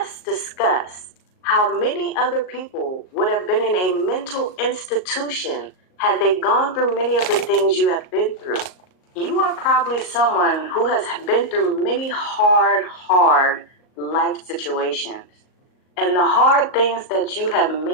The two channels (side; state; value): right; late; 38 ms